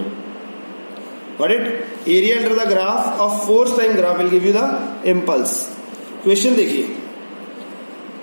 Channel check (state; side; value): inverted; both; correlation -1.00